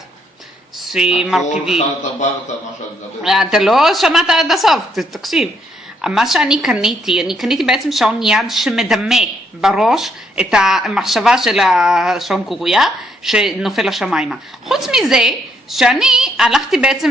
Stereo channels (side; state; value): both; normal; correlation 0.72